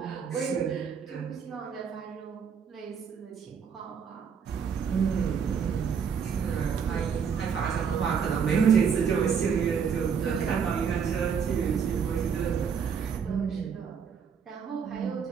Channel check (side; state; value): left; quieter; 6.8 dB